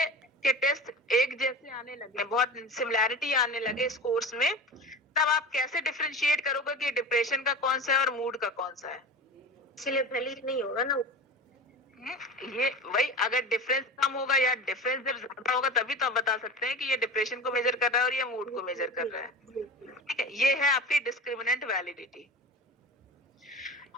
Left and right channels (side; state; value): both; normal; correlation 0.32